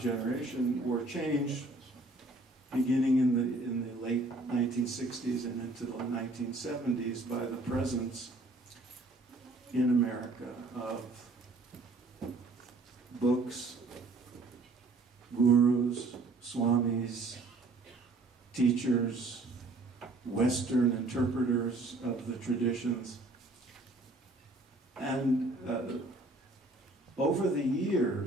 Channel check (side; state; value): left; quieter; 3.1 dB